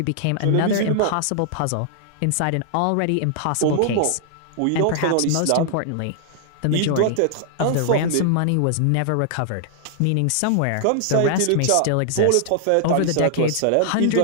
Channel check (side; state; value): both; different; correlation -0.01